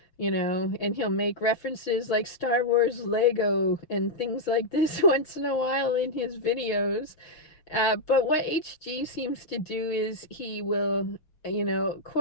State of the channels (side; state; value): right; late; 5.9 ms